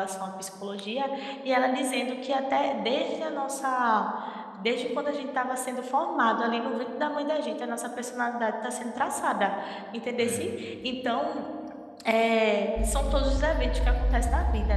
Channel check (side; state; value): both; identical; correlation 1.00